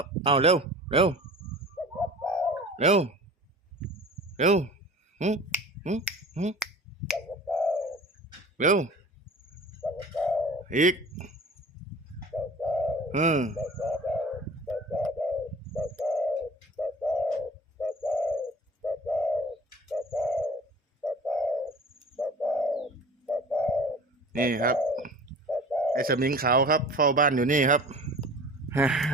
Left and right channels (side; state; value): both; normal; correlation 0.41